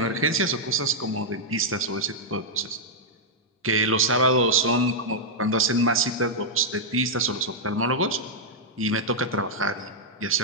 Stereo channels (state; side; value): normal; both; correlation -0.05